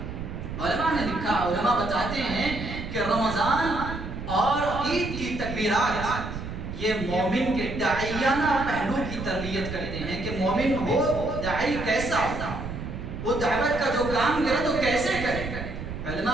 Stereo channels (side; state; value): right; noise; rumble, 7 dB below the sound